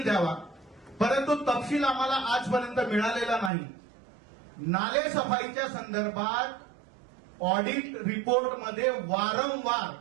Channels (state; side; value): drops out; left; at 3.5 s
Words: द्यावा, परंतु तपशील आम्हाला आजपर्यंत मिळालेला नाही. नाले सफाईच्या संदर्भात ऑडिट रिपोर्टमध्ये वारंवार